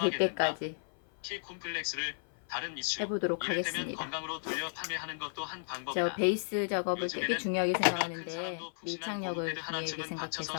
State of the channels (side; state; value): right; silent; 55 dB below the other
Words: 때까지 키 콤플렉스를 다른 이슈 해보도록 이를테면 하겠습니다. 건강으로 돌려 판매하는 것도 한 저 방법이다. 베이스 작업을 되게 요즘에는 중요하게 키가 큰 생각하는데 사람도 푹신한 밀착력을 고무패드 중요하게 하나쯤은 받쳐서